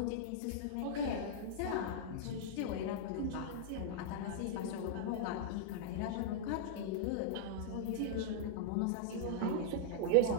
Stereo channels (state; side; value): different; both; correlation -0.02